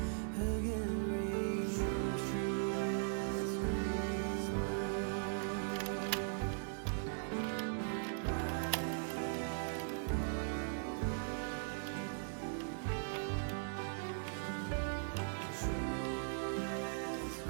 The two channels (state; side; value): silent; left; digital silence